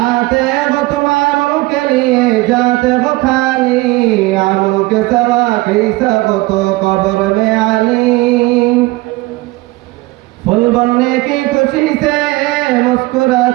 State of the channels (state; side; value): quieter; left; 21.1 dB